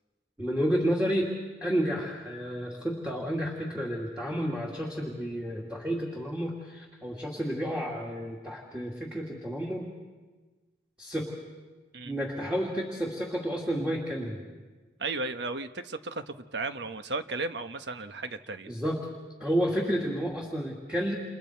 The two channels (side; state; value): both; normal; correlation 0.78